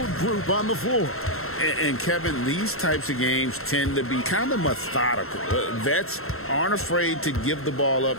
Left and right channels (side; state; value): right; late; 0.62 ms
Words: group on the floor? And Kevin, these types of games tend to be kind of methodical. Vets aren't afraid to give the ball up